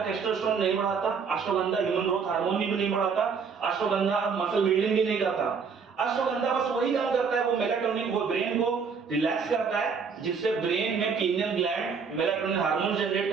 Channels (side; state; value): left; quieter; 5.7 dB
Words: टेस्टोस्टेरोन नहीं बढ़ाता, अश्वगंधा ह्यूमन ग्रोथ हार्मोन भी नहीं बढ़ाता, अश्वगंधा मसल बिल्डिंग भी नहीं करता। अश्वगंधा बस वही काम करता है, वो मेलाटोनिन, वो ब्रेन को रिलैक्स करता है, जिससे ब्रेन में pineal gland melatonin hormone generate